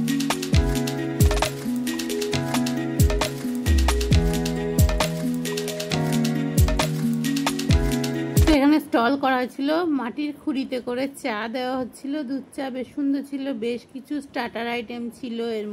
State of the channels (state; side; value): identical; both; correlation 1.00